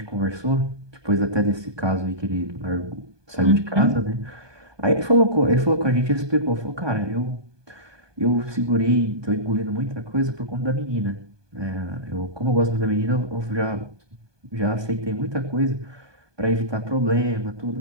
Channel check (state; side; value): late; left; 1.2 ms